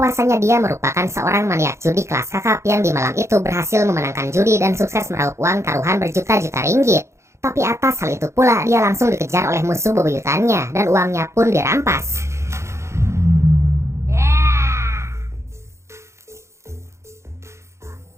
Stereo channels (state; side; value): late; left; 0.14 ms